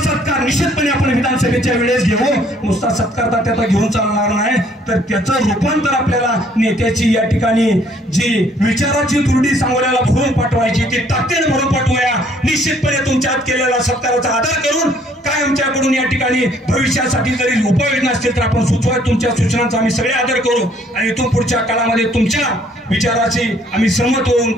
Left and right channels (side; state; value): both; normal; correlation 0.62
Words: सत्कार निश्चितपणे आपण विधानसभेच्या वेळेस घेऊ. नुसता सत्कार त्याचा घेऊन चालणार नाही, तर त्याचं रूपांतर आपल्याला नेत्याची या ठिकाणी जी विचाराची दुर्डी सांगोल्याला भरून पाठवायची ती ताकदीने भरून पाठवूया. निश्चितपणे तुमच्यात केलेला सत्काराचा आदर करून काय आमच्याकडून या ठिकाणी भविष्यासाठी जरी उपाययोजना असतील तर आपण सुचवा. तुमच्या सूचनांचा आम्ही सगळे आदर करू आणि इथून पुढच्या काळामध्ये तुमच्या विचाराची आम्ही सहमत होऊन